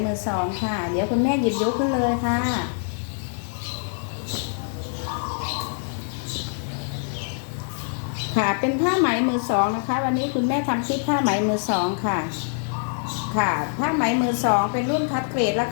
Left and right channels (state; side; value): silent; right; digital silence